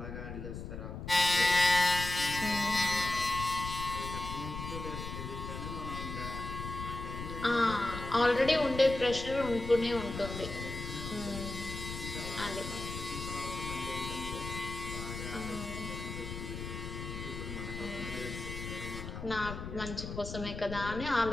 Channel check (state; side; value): noise; left; rumble, 7 dB below the sound